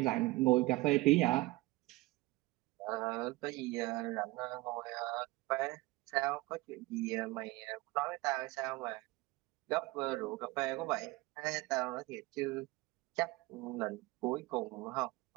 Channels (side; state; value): left; quieter; 20.9 dB